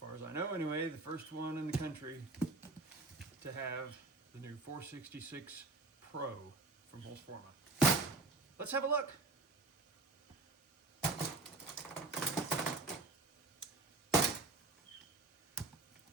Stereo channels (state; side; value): quieter; left; 3.3 dB